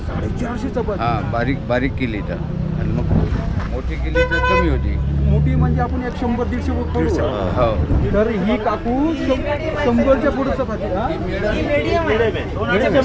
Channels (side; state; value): both; identical; correlation 1.00